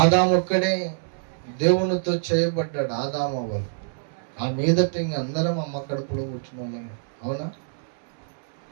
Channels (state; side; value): silent; left; 61 dB below the other